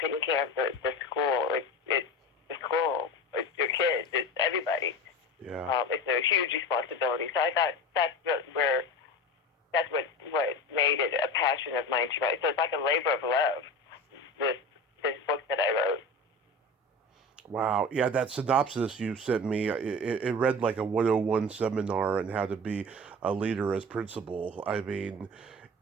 care of the school. It's the school. It's your kids. It's everybody. Yeah. It's a huge responsibility. So I thought that's what made it a passion of mine to write. So it's like a labor of love, this book that I wrote. Wow. Yeah, that synopsis you sent me, it read like a 101 seminar on how to be a leader as principal. I mean,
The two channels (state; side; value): normal; both; correlation 0.31